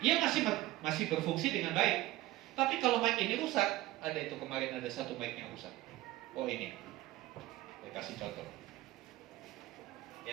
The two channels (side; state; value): left; quieter; 16.7 dB